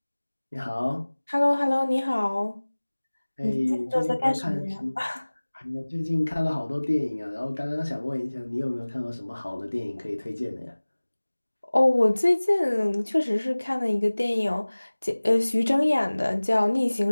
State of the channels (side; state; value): both; inverted; correlation -1.00